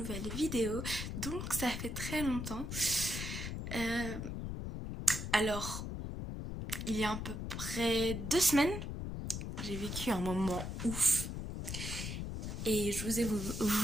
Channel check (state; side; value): noise; left; rumble, 5 dB below the sound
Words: vidéo, donc ça fait très longtemps. Alors, il y a à peu près 2 semaines, j'ai vécu un moment ouf et je